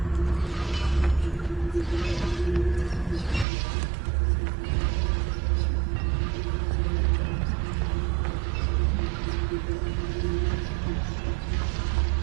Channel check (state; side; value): drops out; left; at 3.5 s